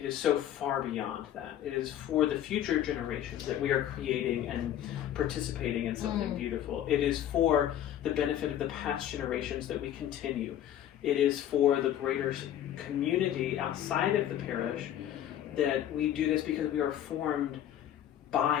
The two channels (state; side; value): quieter; right; 11.2 dB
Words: is so far beyond that. It is for the future generations that we are creating and participating in something beautiful. It is for the benefit of the past generations that we continue. It is for the greater community outside of the parish that we do this because we are formed